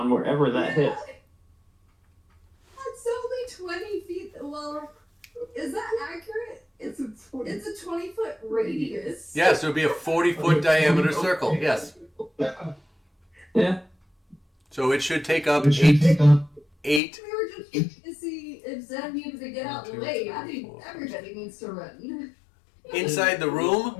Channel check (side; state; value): right; drops out; at 17.0 s